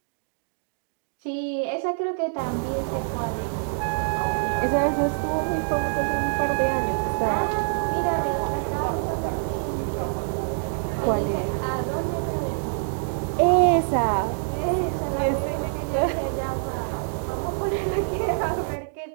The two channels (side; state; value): left; silent; digital silence